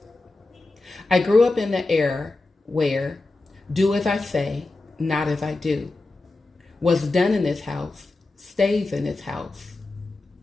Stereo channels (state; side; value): quieter; right; 3.2 dB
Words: I grew up in the era where do as I say, not as I do. What's done in this house stays in this house.